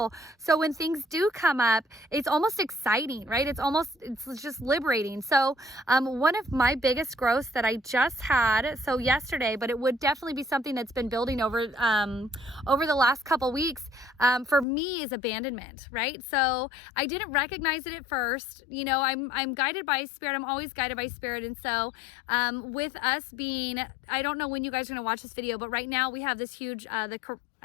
So when things do come up, it's almost exciting, right? It's just liberating. So one of my biggest growths that I just had, so yesterday, but it would definitely be something that's been building over the last couple weeks, for me is abandonment, right? So I didn't recognize it at first. I'm guided by spirit. I'm always guided by spirit. And so with us being, I don't know when you guys are going to watch this video, but right now we have this huge,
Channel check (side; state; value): right; drops out; at 14.7 s